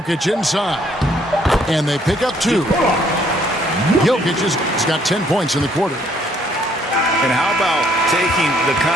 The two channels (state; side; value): normal; both; correlation 0.65